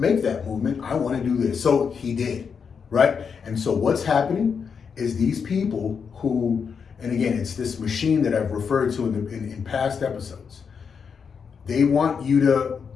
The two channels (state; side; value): quieter; right; 6.3 dB